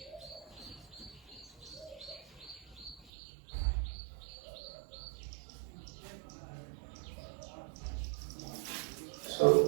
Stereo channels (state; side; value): drops out; left; at 3.1 s